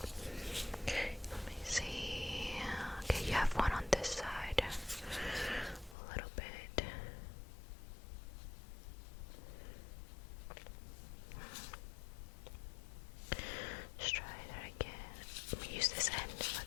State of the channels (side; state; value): right; drops out; at 6.0 s